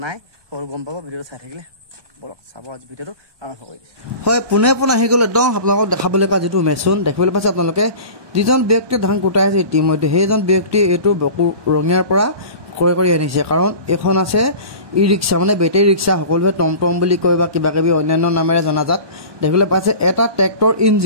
নাই সকলো গম পাব ভিডিঅ'টো চাই থাকিলে বলক চাব আজি ভিডিঅ'টো আৰম্ভ কৰি দিছোঁ হয় পোনে আহি গ'ল একদম আপোনালোকক দেখাবলৈ পোৱা যিটো মেচিন দেখিবলৈ পাইছে আপোনালোকে যিজন ব্যক্তিয়ে ধান কুটাই আছে ইতিমধ্যে সেইজন ব্যক্তিয়ে এইটো বকু ৰঙিয়াৰ পৰা ক্ৰয় কৰি আনিছে কাৰণ এখন আছে ই ৰিক্সা মানে বেটেৰী ৰিক্সা সকলোৱে টমটম বুলি কয় বা কিবা কিবি অন্যান্য নামেৰে জনাজাত দেখিবলৈ পাইছে এটা ট্ৰেক্টৰ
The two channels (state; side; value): late; left; 1.2 ms